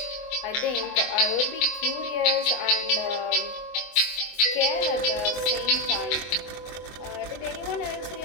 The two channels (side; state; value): right; late; 24 ms